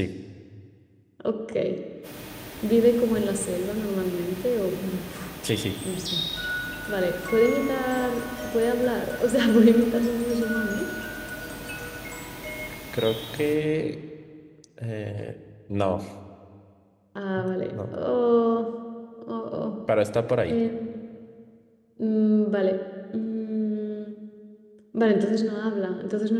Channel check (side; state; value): both; identical; correlation 1.00